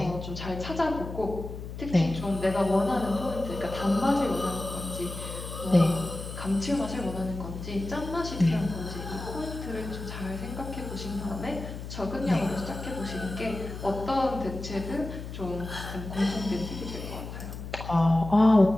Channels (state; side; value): noise; left; hum, 9 dB below the sound